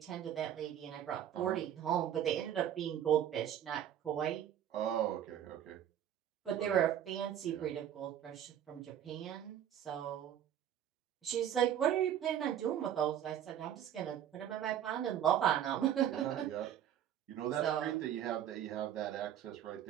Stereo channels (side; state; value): left; quieter; 10.3 dB